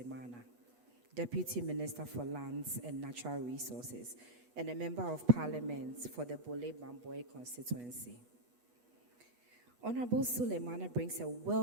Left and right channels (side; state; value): left; late; 8.2 ms